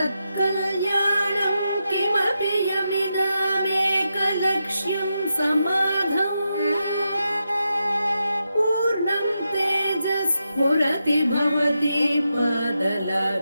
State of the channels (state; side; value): inverted; both; correlation -0.86